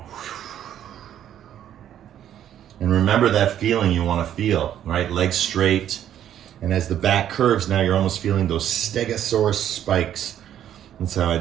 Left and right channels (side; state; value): left; quieter; 10.6 dB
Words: And remember that feeling you want to feel, right? Legs straight. And as the back curves, now you're almost feeling those stegosaurus spikes. That's how I